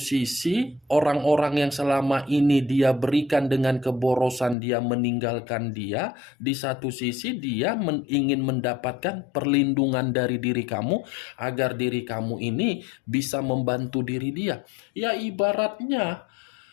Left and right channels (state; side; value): drops out; right; at 4.5 s